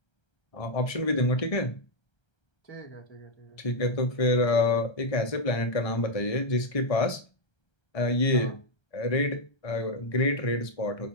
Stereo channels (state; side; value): late; right; 1.3 ms